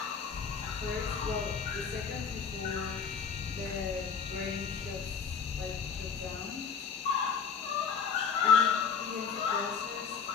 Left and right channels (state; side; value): quieter; right; 6.3 dB